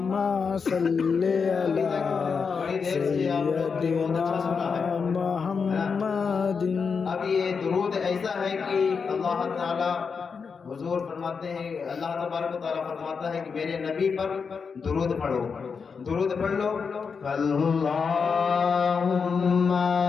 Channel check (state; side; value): quieter; right; 5.6 dB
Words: صل على سيدنا محمد. اب یہ درود ایسا ہے کہ اللہ تعالی حضور فرماتے ہیں، اللہ تبارک و تعالیٰ فرماتا ہے کہ میرے نبی پر درود پڑھو، درود پڑھ لو. اللهم